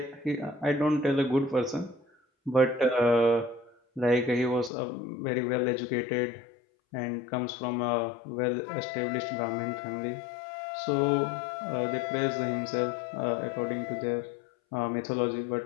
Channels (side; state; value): right; drops out; at 4.7 s